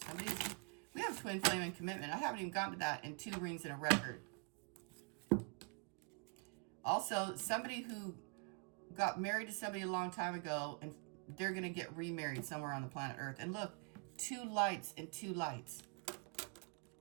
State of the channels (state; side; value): quieter; left; 34.5 dB